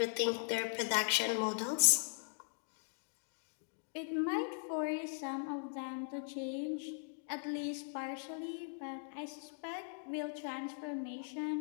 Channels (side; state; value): right; silent; digital silence